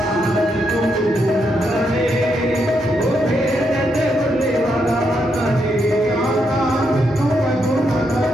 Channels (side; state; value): both; normal; correlation 0.80